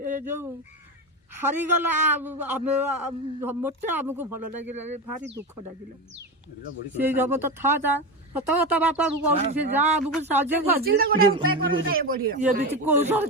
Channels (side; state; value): both; normal; correlation 0.19